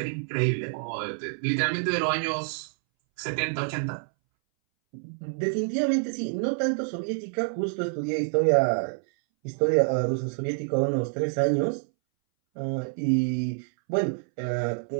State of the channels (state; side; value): silent; left; 60 dB below the other